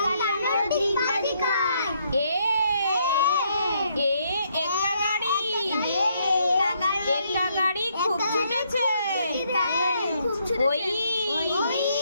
এ, এ একা গাড়ি, একা গাড়ি খুব ছুটেছে। ওই,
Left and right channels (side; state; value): both; inverted; correlation -0.72